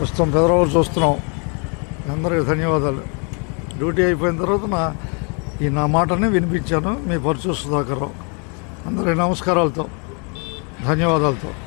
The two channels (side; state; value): right; quieter; 36.7 dB